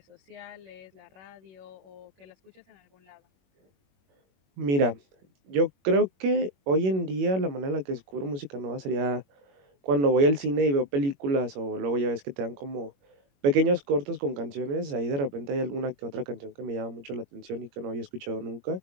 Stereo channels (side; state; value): left; late; 21 ms